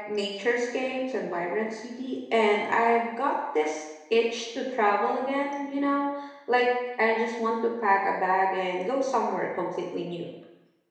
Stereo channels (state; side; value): identical; both; correlation 1.00